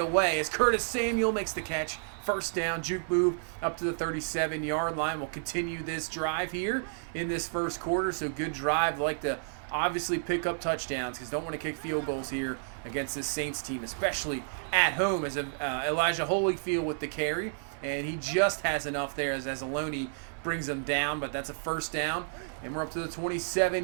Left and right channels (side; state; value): left; silent; digital silence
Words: away as Curtis Samuel makes the catch. 1st down, juke move up to the 37-yard line. We'll continue this drive here in this first quarter, so good drive. Like to obviously pick up touchdowns because don't want to kick field goals here against this Saints team, especially at home, as Elijah Holyfield with the carry, and he just has enough there as Aloni brings him down, but that's a 1st down, and we're up to the